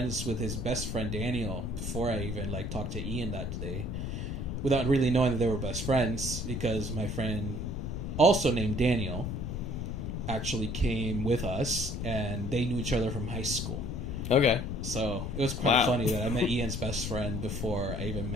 with his best friend Daniel before I even like talked to Ian that day, without really knowing that they were best friends, because my friend, also named Daniel, actually came with us, and they knew each other from high school. Okay. So it was quite funny that I met Ian's best friend before I even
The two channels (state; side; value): noise; left; rumble, 4 dB below the sound